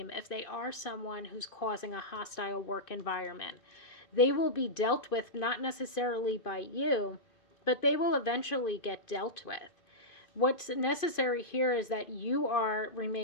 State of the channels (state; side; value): late; right; 2.5 ms